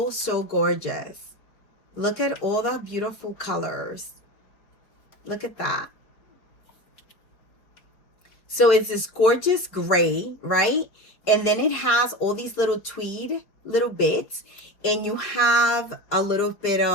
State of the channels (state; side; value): late; right; 4.9 ms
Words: so gorgeous. Look at all the beautiful colors. Look at that. So it's this gorgeous gray, right? And then it has all these little tweed, little bits. And you have a little bit